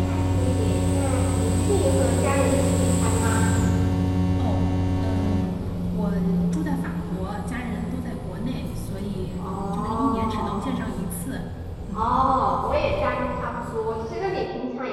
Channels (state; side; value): identical; both; correlation 1.00